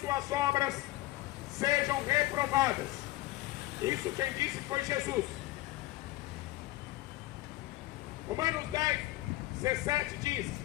obras sejam reprovadas. Isso quem disse foi Jesus. Romanos 10, 17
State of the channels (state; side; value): quieter; right; 18.0 dB